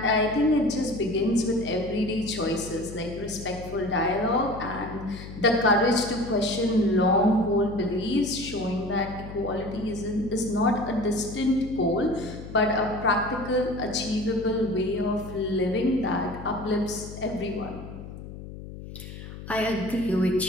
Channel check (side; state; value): left; noise; hum, 12 dB below the sound